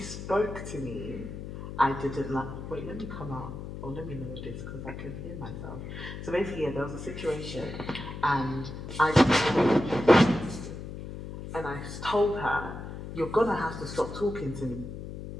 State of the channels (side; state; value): left; noise; hum, 9 dB below the sound